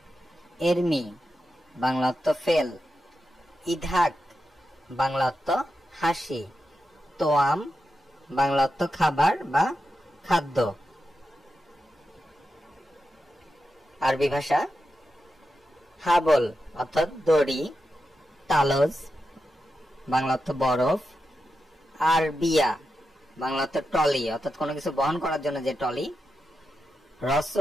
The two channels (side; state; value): both; normal; correlation 0.89